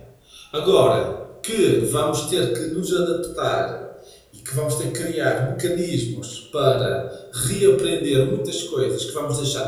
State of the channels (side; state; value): both; identical; correlation 1.00